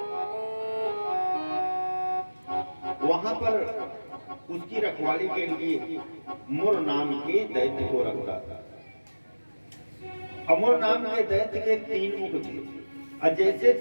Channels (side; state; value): both; inverted; correlation -1.00